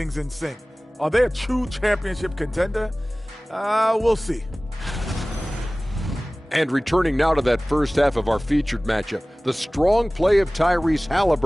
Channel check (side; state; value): both; normal; correlation 0.98